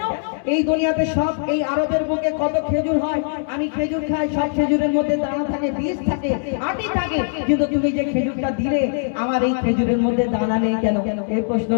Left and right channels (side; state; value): right; silent; digital silence